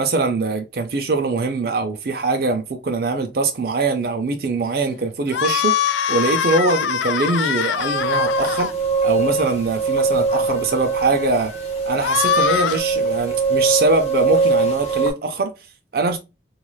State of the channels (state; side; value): normal; both; correlation 0.07